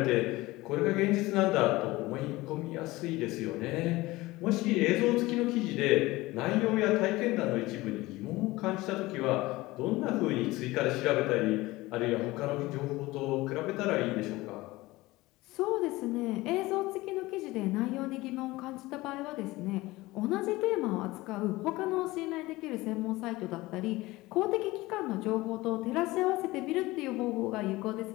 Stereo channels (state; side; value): quieter; right; 19.7 dB